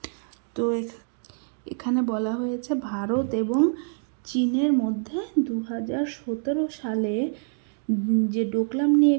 তো এখানে বলা হয়েছে ভারত এবং চীনের মধ্যে 2017 সালে যে ডোকলাম নিয়ে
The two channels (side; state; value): left; silent; 61 dB below the other